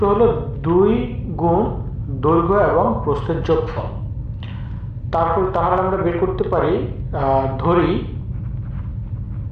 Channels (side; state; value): both; identical; correlation 1.00